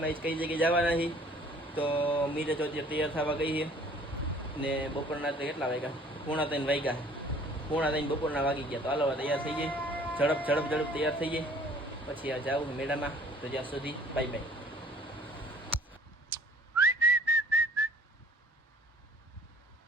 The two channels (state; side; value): normal; both; correlation 0.53